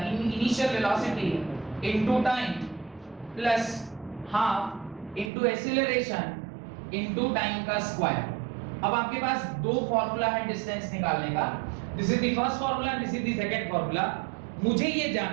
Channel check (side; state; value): left; drops out; at 5.3 s